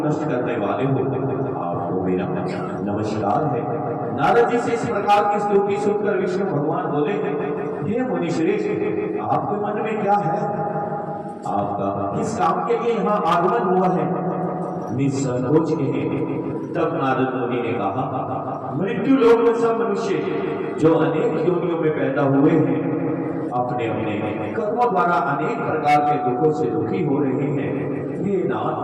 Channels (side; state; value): both; identical; correlation 1.00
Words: नष्ट करने वाले हो। आपको मेरा नमस्कार है। नारद जी से इस प्रकार की स्तुति सुनकर विष्णु भगवान बोले, हे मुनि श्रेष्ठ, आपके मन में क्या है? आपका किस काम के लिए यहाँ आगमन हुआ है? निसंकोच कहे। तब नारद मुनि ने कहा, मृत्यु लोक में सब मनुष्य जो अनेक योनियों में पैदा हुए हैं, अपने अपने कर्मों द्वारा अनेक प्रकार के दुखों से दुखी हो रहे हैं। हे